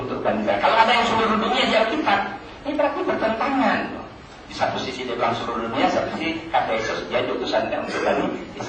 untuk Bani Israel. Kalau ada yang seluruh dunia di Alkitab, ini berarti bertentangan. Di satu sisi dia bilang seluruh dunia, satu sisi kata Yesus dia utusan untuk Bani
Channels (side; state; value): both; identical; correlation 1.00